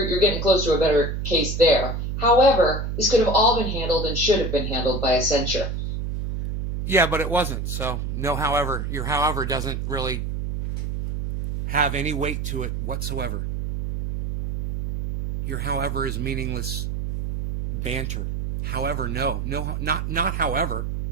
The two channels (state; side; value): noise; right; hum, 3 dB below the sound